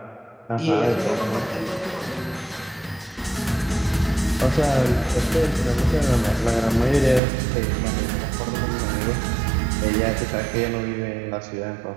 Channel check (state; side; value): drops out; left; at 7.2 s